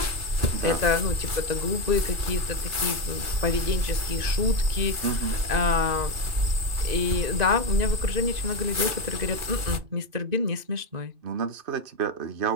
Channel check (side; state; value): left; late; 2.6 ms